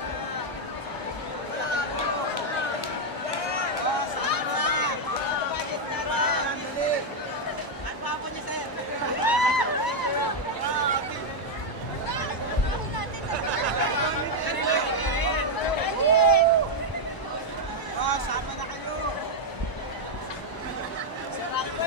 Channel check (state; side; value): late; right; 1.0 ms